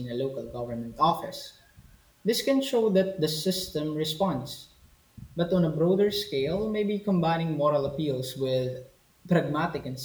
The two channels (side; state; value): both; identical; correlation 1.00